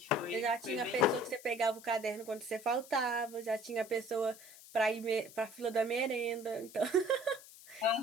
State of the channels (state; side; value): noise; left; hiss, 19 dB below the sound